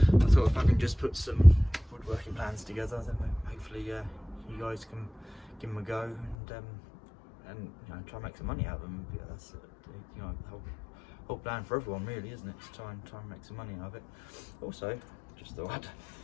thought if I can just put some woodworking plans together, then hopefully you guys can give them a go, and try and make some money out of them. Yeah, that's the whole plan for everyone really, isn't it? To try and make some money out of it. Also, just thought I'd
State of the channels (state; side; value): drops out; right; at 6.4 s